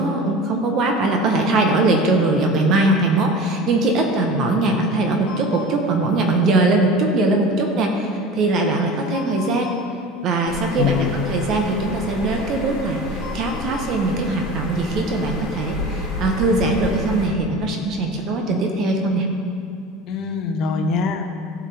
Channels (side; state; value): both; normal; correlation 0.35